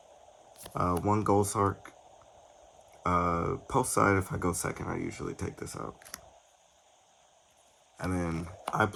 1 gold sark. Post side, if I go second, I usually take this out. And then I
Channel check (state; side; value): identical; both; correlation 1.00